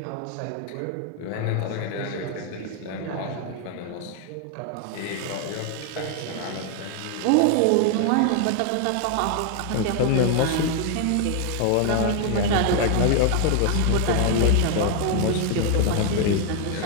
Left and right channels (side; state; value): both; different; correlation 0.01